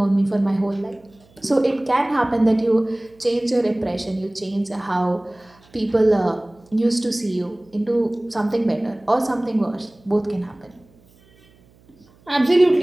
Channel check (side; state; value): right; noise; hum, 30 dB below the sound